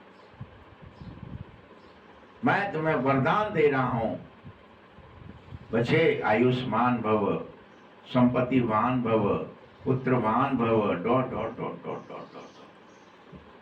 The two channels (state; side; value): identical; both; correlation 1.00